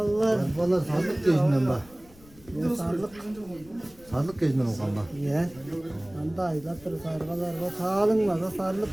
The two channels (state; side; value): noise; left; rumble, 23 dB below the sound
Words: valla sarlık gezinden bak. Sarlık gezinden o kan bak. Ya. Anda aylattır sargalar. Bu tağalın var.